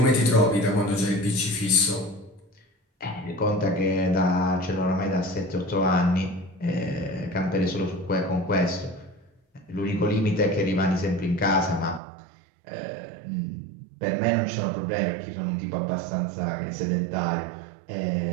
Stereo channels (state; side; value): drops out; left; at 12.0 s